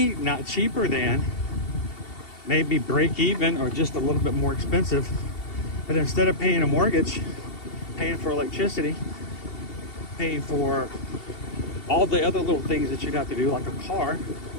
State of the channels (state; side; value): late; right; 2.7 ms